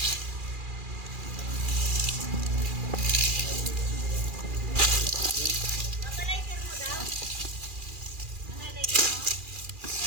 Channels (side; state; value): left; late; 2.4 ms